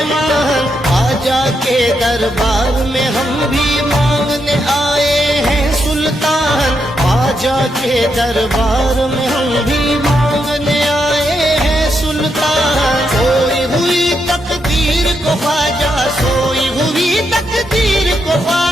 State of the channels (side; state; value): both; normal; correlation 0.81